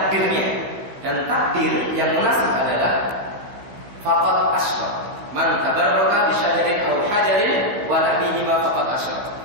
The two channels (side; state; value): left; late; 15 ms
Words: dan takdir yang munasib adalah faqad asyrak. Man tabarraka bisyajarin aw hajarin wa nahwihima faqad asyrak.